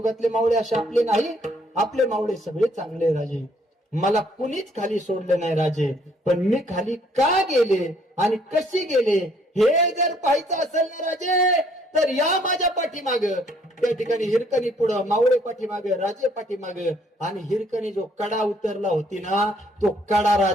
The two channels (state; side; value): normal; both; correlation 0.65